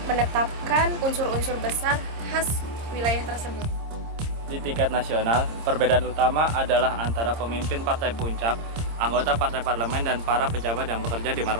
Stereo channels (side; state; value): left; late; 26 ms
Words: menetapkan unsur-unsur besar khas wilayah tersebut. Di tingkat nasional, perbedaan utama adalah antara pemimpin partai puncak, anggota partai parlemen, dan para pejabat yang bekerja di